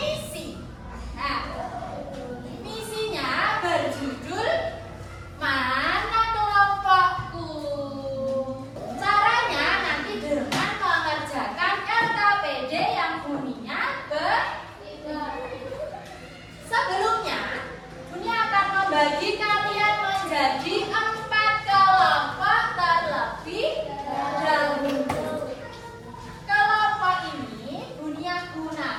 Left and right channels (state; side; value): identical; both; correlation 1.00